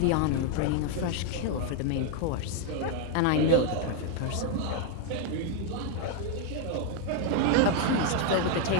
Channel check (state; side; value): different; both; correlation 0.01